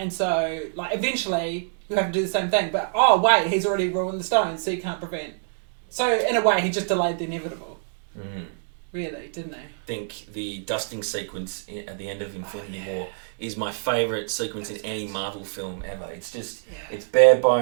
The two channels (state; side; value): silent; left; digital silence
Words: so, like, eventually, you have to do the same thing. But, oh, wait, he's already ruined the stones, so you can't prevent. So, in a way, he just delayed the inevitable. Really, didn't he? I think the dusting sequence at the end of Infinity War is my favourite sequence in any Marvel film ever. It's just, it's bare